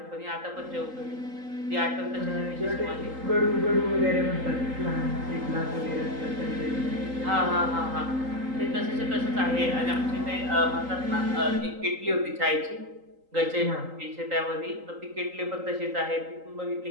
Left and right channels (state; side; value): late; left; 3.8 ms